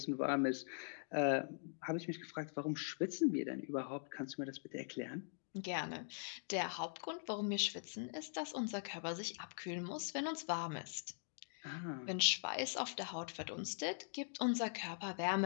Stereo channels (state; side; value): silent; right; digital silence